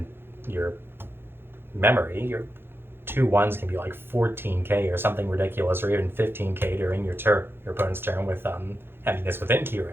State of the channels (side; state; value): left; late; 0.11 ms